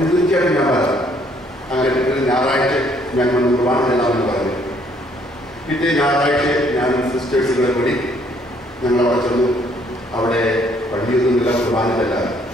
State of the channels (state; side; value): normal; both; correlation 0.65